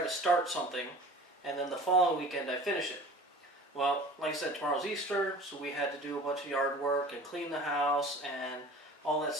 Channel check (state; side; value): normal; both; correlation 0.42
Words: to start something, and then the following weekend I finish it. Well, like I said, tomorrow's Easter, so we had to do a bunch of yard work and clean the house and all that